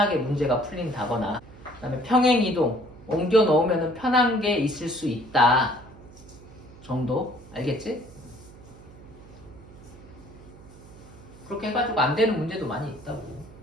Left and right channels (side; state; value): right; noise; hum, 20 dB below the sound